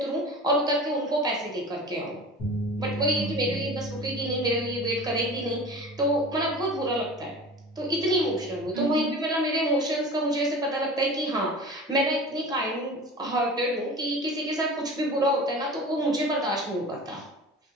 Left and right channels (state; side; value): normal; both; correlation 0.37